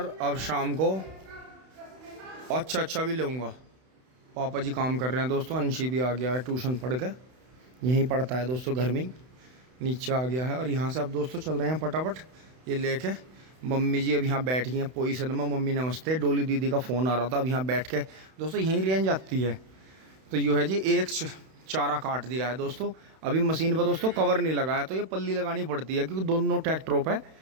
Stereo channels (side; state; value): left; late; 31 ms